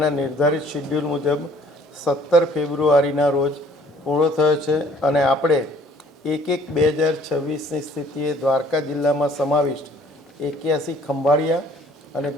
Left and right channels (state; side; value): normal; both; correlation 0.57